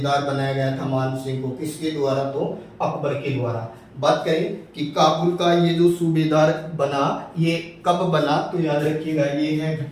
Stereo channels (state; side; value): identical; both; correlation 1.00